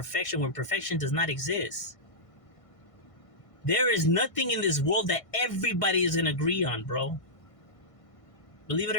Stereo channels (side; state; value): right; late; 1.5 ms